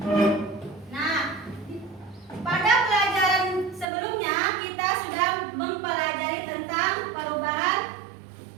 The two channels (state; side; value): drops out; left; at 3.9 s